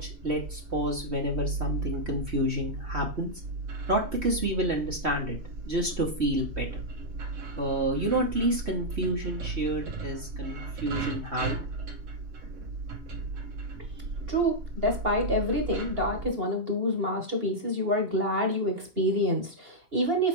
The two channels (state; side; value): late; left; 3.1 ms